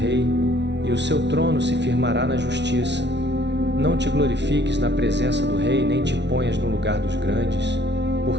e o seu trono se firmará na justiça. Não te glorifiques na presença do rei, nem te ponhas no lugar dos grandes,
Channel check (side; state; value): left; late; 0.51 ms